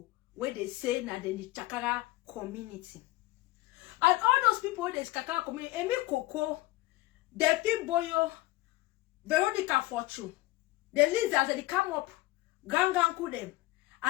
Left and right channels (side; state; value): right; quieter; 19.2 dB